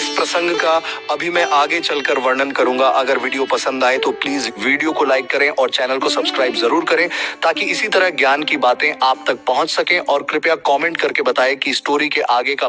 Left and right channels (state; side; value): identical; both; correlation 1.00